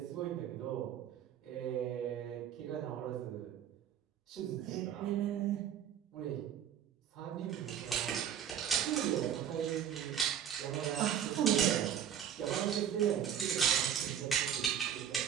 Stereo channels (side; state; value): left; quieter; 9.5 dB